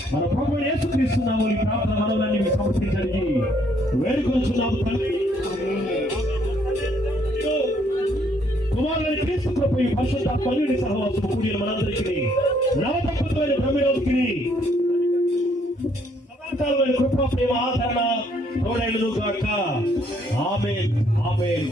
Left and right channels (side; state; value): both; normal; correlation 0.68